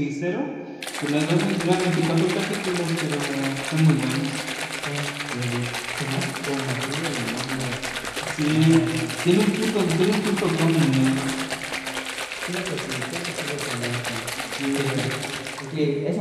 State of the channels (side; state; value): both; identical; correlation 1.00